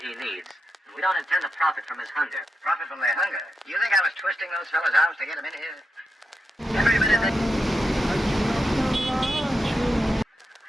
he needs. We don't intend to profit from his hunger. Profit from their hunger? You think I was twisting those fellas' arms to get them in here? Every minute they...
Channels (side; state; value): both; normal; correlation 0.87